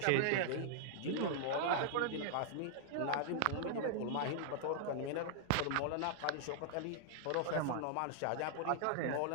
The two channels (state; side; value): different; both; correlation -0.01